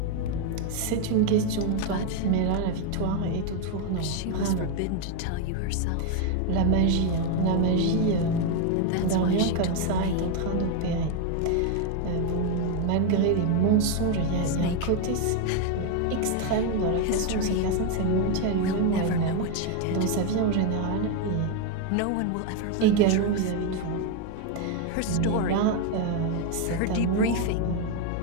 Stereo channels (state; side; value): different; both; correlation 0.01